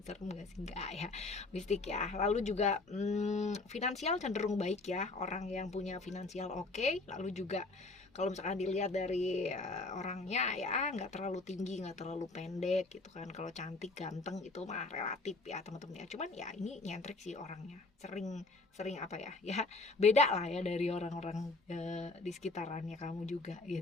Serem gak sih? Enggak ya, mistik ya. Lalu juga finansial cenderung baik ya, orang yang punya finansial oke. Lalu juga kalau misalkan dilihat dari orangnya ya, nggak terlalu tinggi, nggak terlalu pendek gitu kan. Kalau cantik ganteng itu mah relatif ya teman-teman ya. Cuman ya ini nyentrik sih orangnya, sering ya beda lah ya dari orang-orang di sekitarannya kamu juga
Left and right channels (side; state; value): right; quieter; 3.4 dB